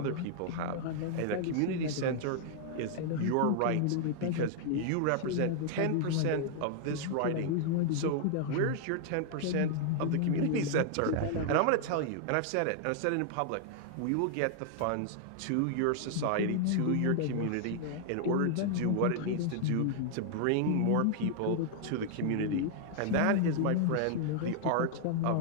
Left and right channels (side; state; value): both; different; correlation 0.00